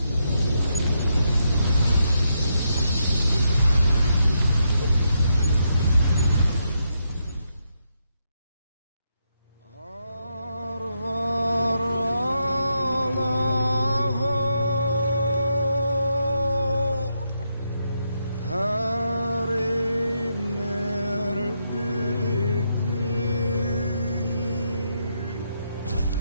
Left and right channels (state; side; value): inverted; both; correlation -0.81